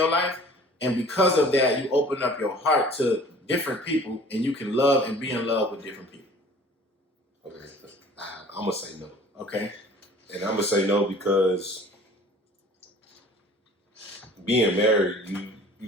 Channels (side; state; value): both; normal; correlation 0.48